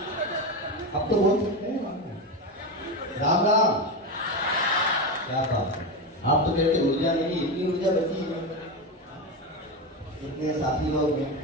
अब तो बोल सकते हैं राम राम। क्या बात है, आप तो कहते ऊर्जा नहीं, इतनी ऊर्जा बची है। इतने साथी लोग हैं,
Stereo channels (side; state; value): both; normal; correlation 0.16